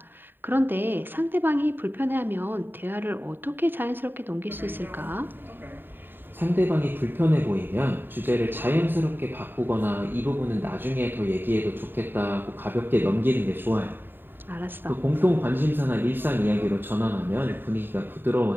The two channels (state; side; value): late; left; 0.095 ms